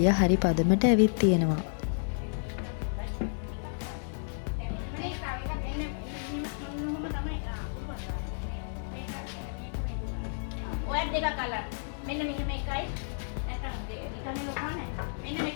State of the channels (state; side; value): silent; right; digital silence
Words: හරි පදමට ඇවිත් තියෙනවා. ඔය දෙක කලර් මෙන්න මෙහෙම එකයි. නැත්නම් නිකන් ලොකා නැහැ. මෙන්න මේක